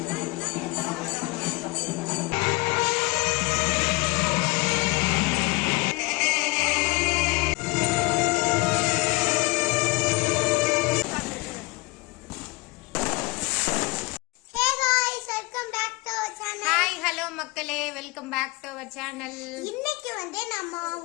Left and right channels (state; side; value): quieter; right; 24.6 dB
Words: மக்களே, welcome back to our channel. இன்னைக்கு வந்து நம்ம